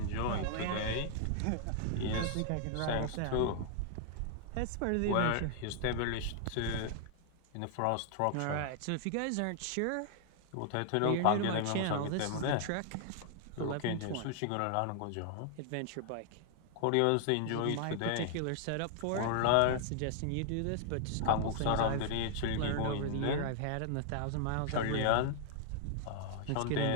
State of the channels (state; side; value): different; both; correlation 0.00